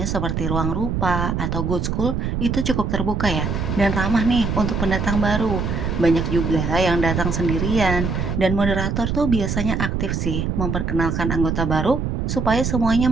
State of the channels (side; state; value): right; noise; rumble, 1 dB below the sound